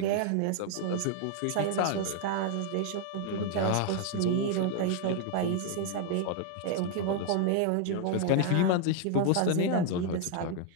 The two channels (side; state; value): both; different; correlation 0.00